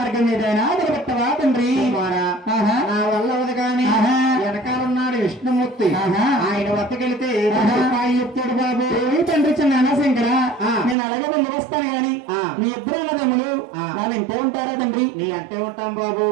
ఏదైనా నిలబెట్టవా తండ్రి. నా వల్ల అవదు కానీ వెనకాలన్నాడు విష్ణుమూర్తి. ఆయన వద్దకెళ్తే చెప్తాడు బాబు. తండ్రి చిన్న శంకర నేను అలాగే వెళ్ళి వస్తాను గాని మీ ఇద్దరు అన్నదమ్ములు వాళ్ళు ఇంటే ఉంటారా తండ్రి. నీ అంటే ఉంటాం బాబు.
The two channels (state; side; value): drops out; left; at 11.0 s